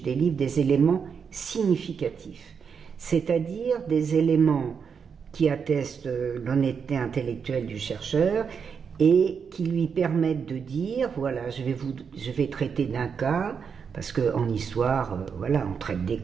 des livres, des éléments significatifs, c'est-à-dire des éléments qui attestent l'honnêteté intellectuelle du chercheur et qui lui permettent de dire, voilà, je vais traiter d'un cas, parce qu'en histoire, voilà, on traite des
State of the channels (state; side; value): quieter; left; 6.4 dB